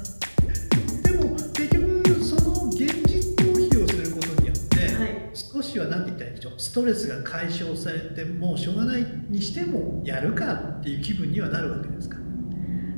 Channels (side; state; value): both; inverted; correlation -1.00